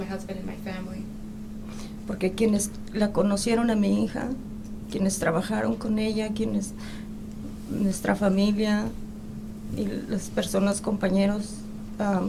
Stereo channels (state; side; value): identical; both; correlation 1.00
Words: husband and my family. porque quienes la conocieron a mi hija, quienes trabajaron con ella, nuestra familia y las personas, compañeros